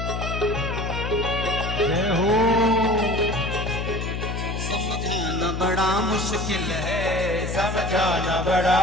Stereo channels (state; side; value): noise; left; hum, 4 dB below the sound